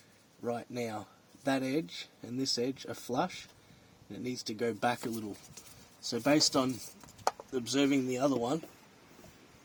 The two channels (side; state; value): both; identical; correlation 1.00